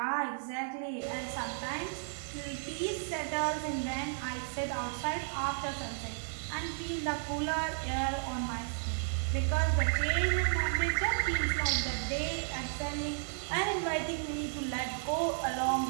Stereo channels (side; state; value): left; silent; 55 dB below the other